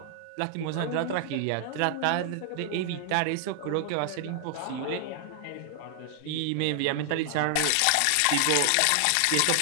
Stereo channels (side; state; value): both; different; correlation 0.00